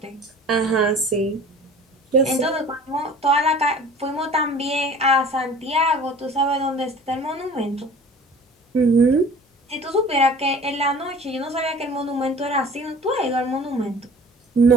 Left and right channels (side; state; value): both; normal; correlation 0.45